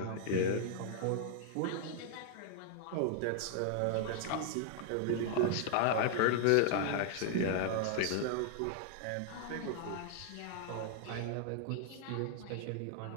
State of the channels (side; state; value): both; different; correlation 0.00